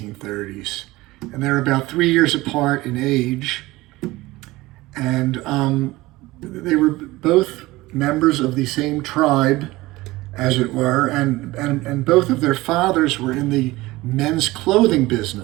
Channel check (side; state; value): left; quieter; 19.5 dB